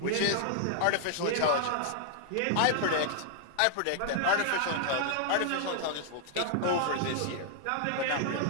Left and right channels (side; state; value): both; different; correlation 0.00